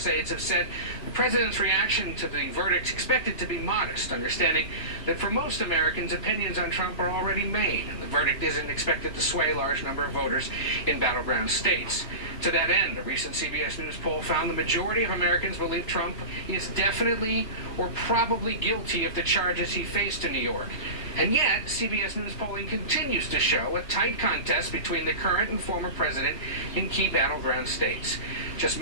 aides have said the president's reaction to the verdict is expected to be modest, understanding that for most Americans, opinions on Trump are already made. The verdict isn't expected to sway a large number of voters in battleground states. To that end, a recent CBS News poll found the majority of Americans believe Trump is definitely or probably guilty of the charges he faced in New York. And yet, CBS News polling continues to show a tight contest between the current and former president in key battleground states. Just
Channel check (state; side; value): late; right; 3.0 ms